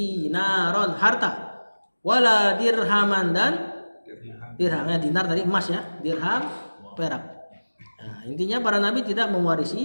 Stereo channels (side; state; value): both; inverted; correlation -1.00